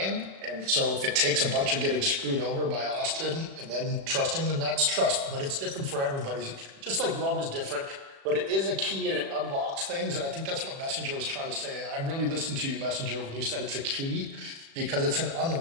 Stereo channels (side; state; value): left; late; 36 ms